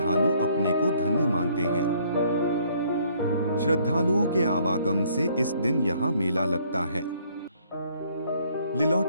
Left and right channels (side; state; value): both; inverted; correlation -0.63